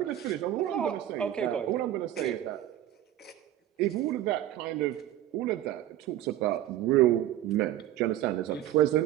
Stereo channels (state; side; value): quieter; left; 12.9 dB